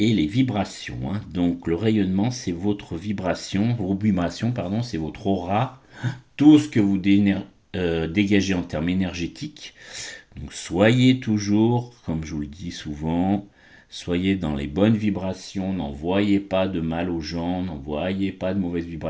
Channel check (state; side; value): identical; both; correlation 1.00